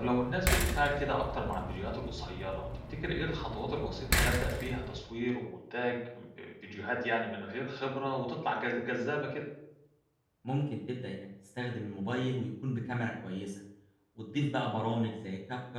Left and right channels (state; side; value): identical; both; correlation 1.00